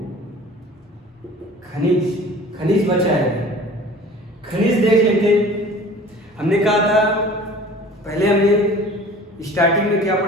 खनिज। खनिज बचा है, खनिज देख लेते। हमने कहा था पहले, हमने स्टार्टिंग में क्या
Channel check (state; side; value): normal; both; correlation 0.45